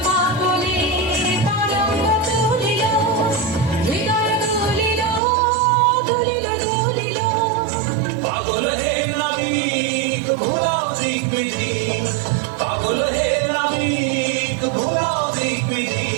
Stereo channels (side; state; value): left; drops out; at 5.2 s